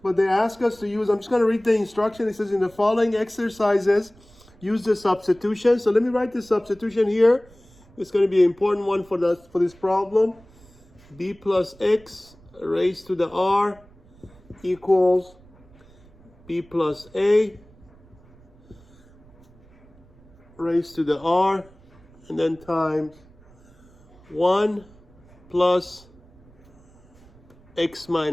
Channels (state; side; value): noise; right; rumble, 27 dB below the sound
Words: but they ask us to use. I'm just going to read the instruction. It says in the following exercises, use the substitution. So let me write the substitution here. It's going to be an important one for this problem. B plus x raised to the r equals b plus a raised to the r, and then times 1 plus x